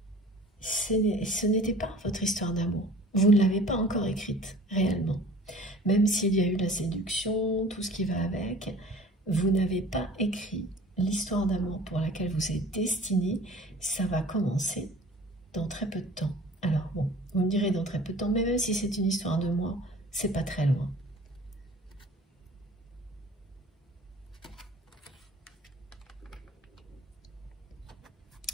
Ce n'était pas votre histoire d'amour. Vous ne l'avez pas encore écrite, réellement. Même s'il y a eu la séduction, tout ce qui va avec, vous n'avez pas écrit l'histoire d'amour pour laquelle vous êtes destiné. Ça va commencer dans très peu de temps. Alors bon, vous me direz dans très peu de temps, mais même si c'est une histoire de mois, c'est pas très loin.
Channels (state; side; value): normal; both; correlation 0.46